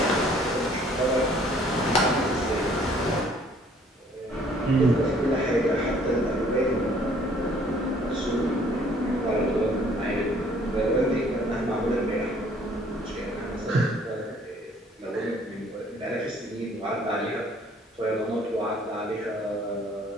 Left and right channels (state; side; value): normal; both; correlation 0.59